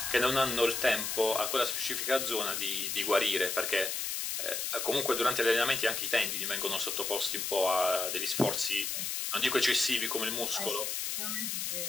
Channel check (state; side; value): noise; left; hiss, 2 dB below the sound